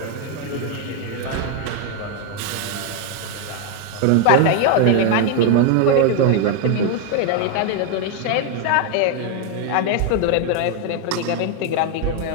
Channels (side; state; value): both; different; correlation 0.01